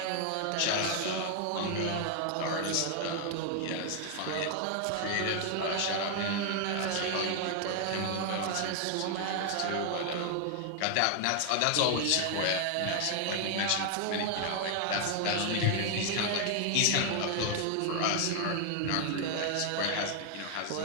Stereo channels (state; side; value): different; both; correlation 0.00